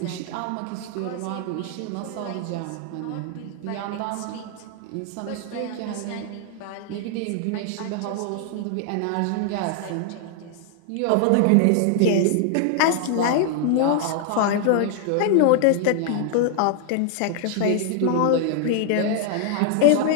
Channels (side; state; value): both; different; correlation 0.00